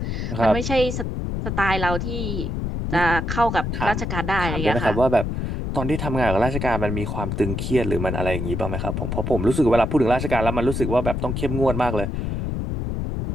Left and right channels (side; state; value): left; noise; rumble, 2 dB below the sound